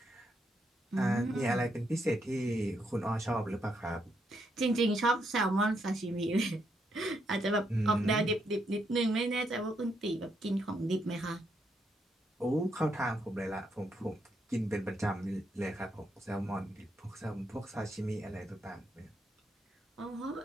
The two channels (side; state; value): both; normal; correlation 0.78